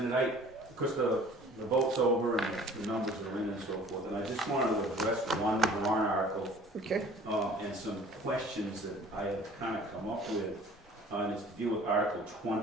Of course, the vote's over and the numbers are in and so forth, and I just wanted to address one warrant article Okay. and some questions that I have kind of come up with, and it's to deal with Article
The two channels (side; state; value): both; normal; correlation 0.50